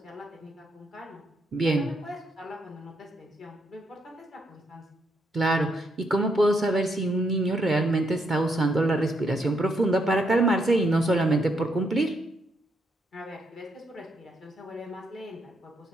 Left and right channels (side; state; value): both; normal; correlation 0.76